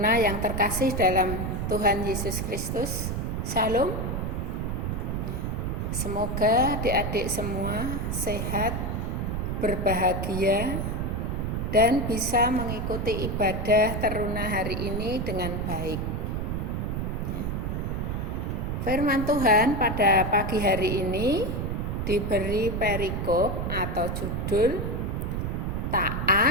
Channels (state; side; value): noise; right; rumble, 1 dB below the sound